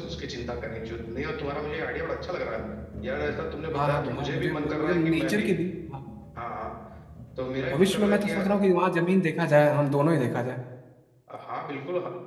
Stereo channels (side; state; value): both; identical; correlation 1.00